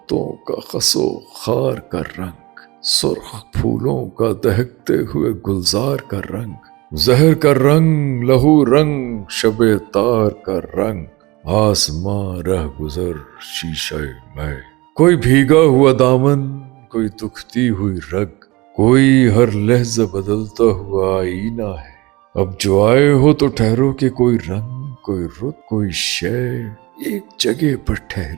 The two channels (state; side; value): quieter; left; 22.2 dB